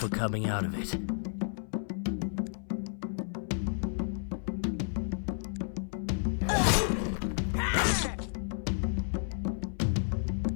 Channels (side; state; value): right; silent; 57 dB below the other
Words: coming out of it.